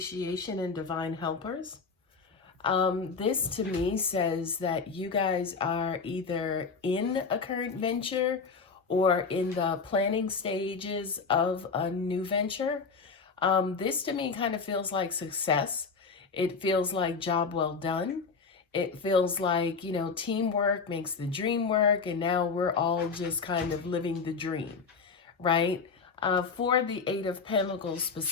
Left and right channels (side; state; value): right; quieter; 5.1 dB